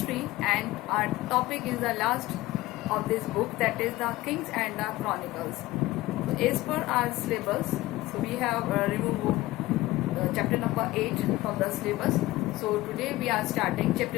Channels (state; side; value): quieter; right; 18.0 dB